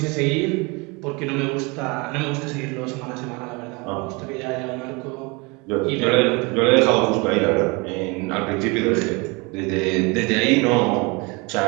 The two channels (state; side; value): quieter; left; 27.9 dB